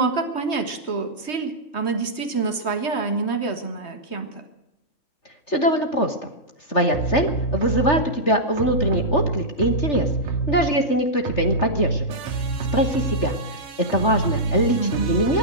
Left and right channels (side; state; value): right; late; 3.2 ms